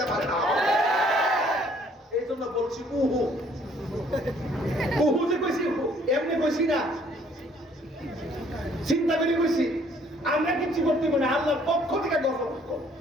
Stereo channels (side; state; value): both; normal; correlation 0.61